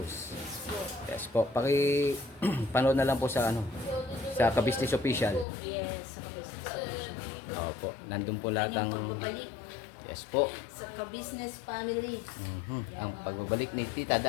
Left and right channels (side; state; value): right; drops out; at 5.5 s